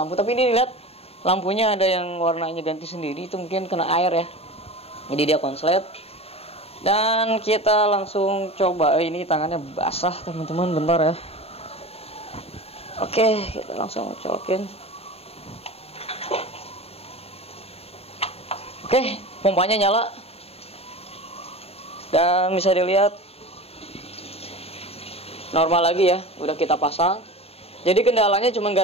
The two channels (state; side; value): late; right; 0.29 ms